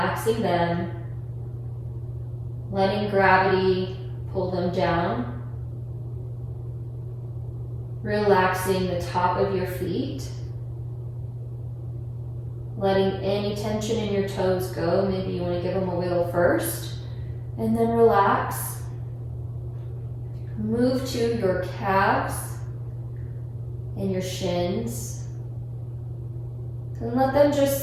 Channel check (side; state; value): both; identical; correlation 1.00